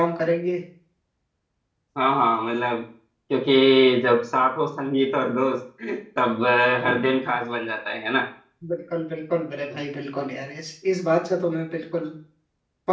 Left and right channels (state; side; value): identical; both; correlation 1.00